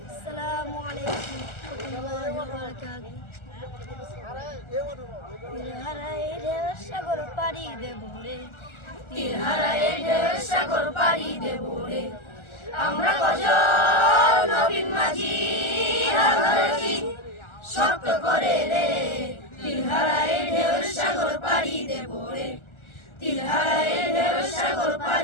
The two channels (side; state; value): right; late; 1.4 ms